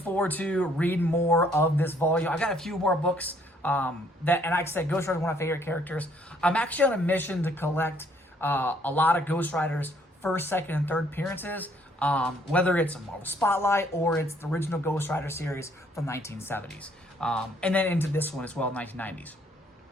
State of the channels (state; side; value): normal; both; correlation 0.65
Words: to reading more of this volume. I got a few more books and like I said, Ghost Rider is one of my favorite characters. I'm actually on a mission to collect a lot of Ghost Rider's first, second, and third appearances, whether it's a Marvel Spotlight or it's the original Ghost Rider series from the 1970s, and then into this one as well, 1990s.